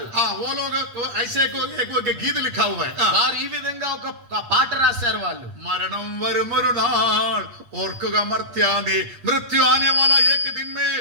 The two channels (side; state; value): left; late; 8.5 ms